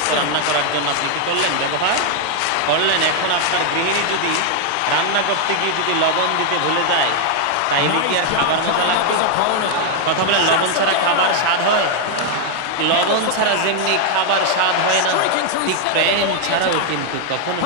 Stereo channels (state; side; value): different; both; correlation 0.00